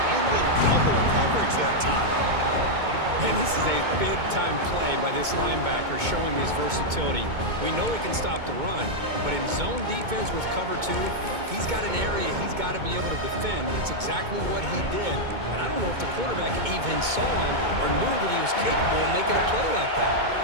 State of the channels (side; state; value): left; late; 2.2 ms